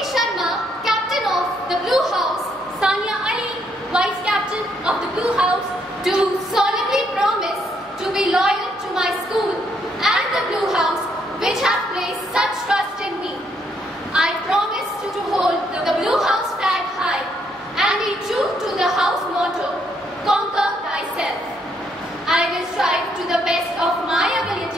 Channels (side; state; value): both; normal; correlation 0.72